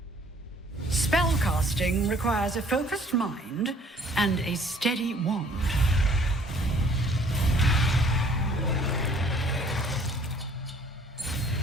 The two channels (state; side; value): normal; both; correlation 0.57